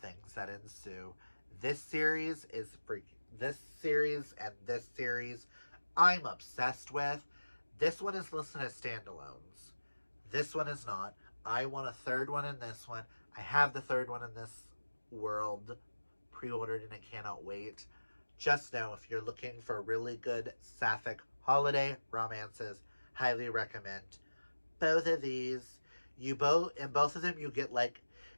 that ensue. This series is freaking. This series I'm obsessed with. This one is listed as standalones. This one is not. I want a third one in this one. I have the third one in this World pre-ordered and I cannot wait. Just know if you're looking for really good sapphic holiday romances, highly recommend both of these. In both of them you get, like,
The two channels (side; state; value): both; inverted; correlation -1.00